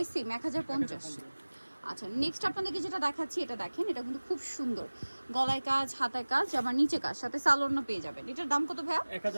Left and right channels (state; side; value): inverted; both; correlation -1.00